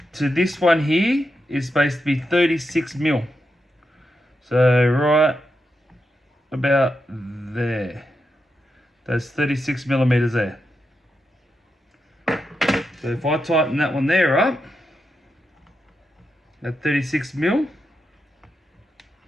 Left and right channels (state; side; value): normal; both; correlation 0.86